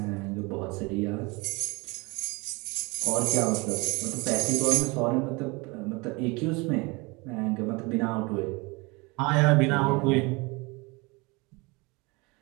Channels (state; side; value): quieter; left; 26.2 dB